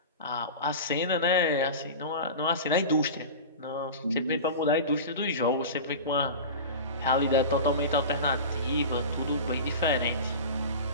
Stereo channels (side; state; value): both; inverted; correlation -0.30